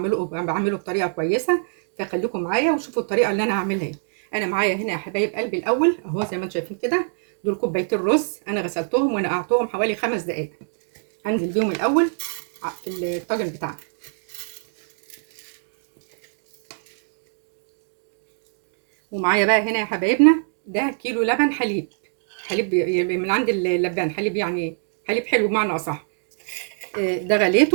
بعمله بطريقه كويسه، فخليكم معايا وشوفوا الطريقه اللي انا هعملها ايه. انا معايا هنا يا حبايب قلبي الاول اهو زي ما انتم شايفين كده، دول كوبايتين رز انا غسلتهم ونقعتهم حوالي 5 دقائق. هنزل بيهم الاول في الطاجن بتاعنا. ومعايا بقى هنا يا حبايبنا ده كيلو لبن حليب، حليب من عند اللبان، حليب يعني حليب حلو بمعنى اصح. ده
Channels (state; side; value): silent; left; digital silence